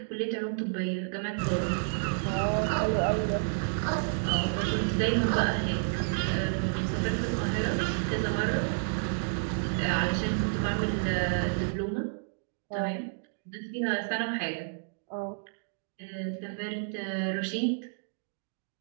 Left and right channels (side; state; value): left; silent; digital silence